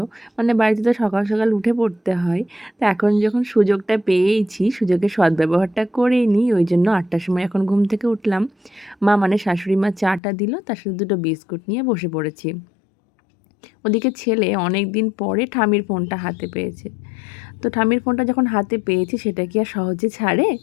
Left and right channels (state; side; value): drops out; right; at 10.2 s